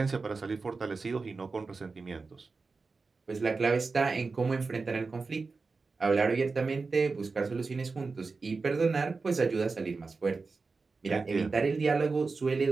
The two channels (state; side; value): quieter; left; 4.2 dB